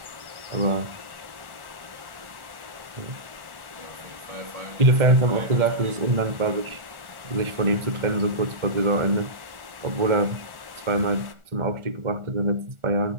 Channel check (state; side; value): late; left; 1.4 ms